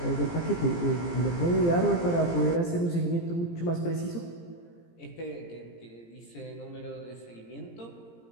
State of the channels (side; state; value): right; late; 17 ms